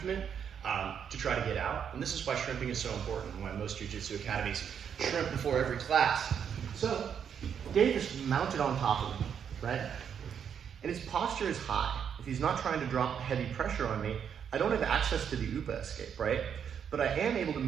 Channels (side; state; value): left; quieter; 7.9 dB